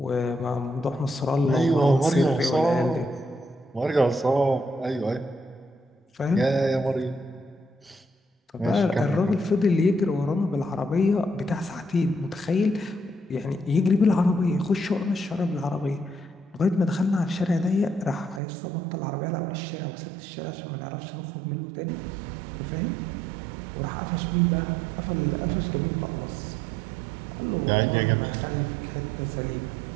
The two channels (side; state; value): left; drops out; at 18.4 s